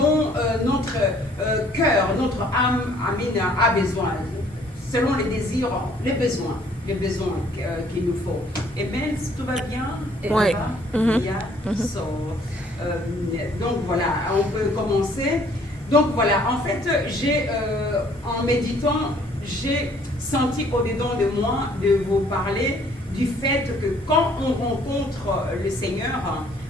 notre cœur, notre âme a besoin. Selon les désirs, les besoins qu'il nous faut. Et bien, si tout va bien, et oui. Donc voilà, on peut commencer. Donc voilà, en fait, en méditant, j'ai senti au-dedans de moi de vous parler du fait que quand on rencontre le Seigneur,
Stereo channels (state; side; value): normal; both; correlation 0.60